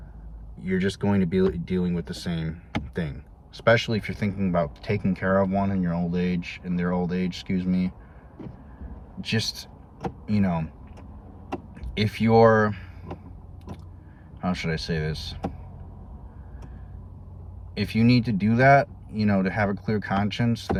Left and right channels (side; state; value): both; identical; correlation 1.00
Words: You're just going to be dealing with the same thing. Especially if you're thinking about taking care of one in their old age, excuse me. Just, you know, if you're, how should I say this? If you need to do that, you know, to have a clear conscience,